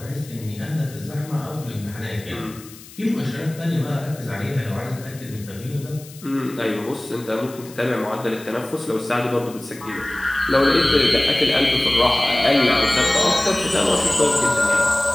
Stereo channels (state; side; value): noise; left; hiss, 19 dB below the sound